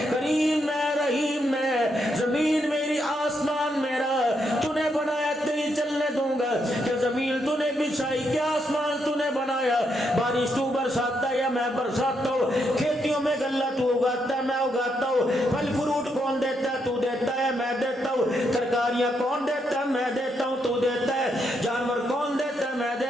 کریم میں، رحیم میں، زمین میری، آسمان میرا، تو نے بنایا تیری چلنے دوں گا کہ زمین تو نے بچھائی، کیا آسمان تو نے بنایا، بارش تو برساتا ہے یا میں برساتا ہوں، کھیتیوں میں غلہ تو اگاتا ہے میں اگاتا ہوں، پھل فروٹ کون دیتا ہے؟ تو دیتا ہے میں دیتا ہوں، ترکاریاں کون دیتا ہے؟ میں دیتا ہوں تو دیتا ہے، جانور کون دیتا ہے؟ میں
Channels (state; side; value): normal; both; correlation 0.79